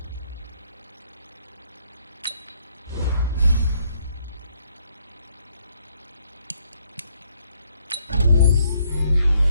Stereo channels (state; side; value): inverted; both; correlation -0.70